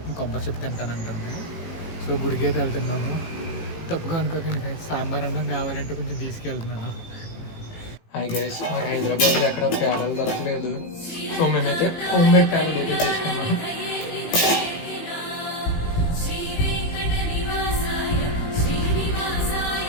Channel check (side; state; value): right; late; 18 ms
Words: కొబ్బరి చెప్పు తింటానంటుంది. సో గుడికి అయితే వెళ్తున్నాము. తప్పుగా అనుకోకండి గైస్, సాంబార్ అన్నం కావాలంటే కొంచెం తీసుకెళ్తున్నాను. హాయ్ గైస్, నాకు హైదరాబాద్లో ఎక్కడ పేడలు దొరకలేదు. సో మేమైతే హోమ్ మేడ్ పేడలు అయితే తీసుకున్నాము.